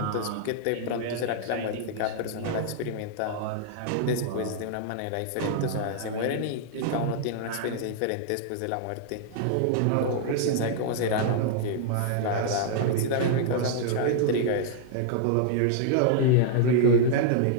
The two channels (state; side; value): different; both; correlation -0.01